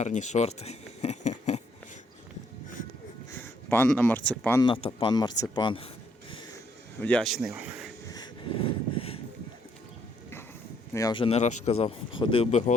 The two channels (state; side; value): normal; both; correlation 0.70